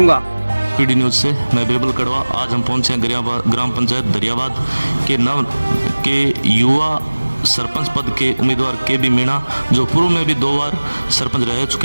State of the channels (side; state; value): both; inverted; correlation -1.00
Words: पीडी न्यूज से मैं बीरबल कड़वा। आज हम पहुंचे हैं ग्राम पंचायत धरियाबाद के युवा सरपंच पद के उम्मीदवार केबी मीणा, जो पूर्व में भी 2 बार सरपंच रह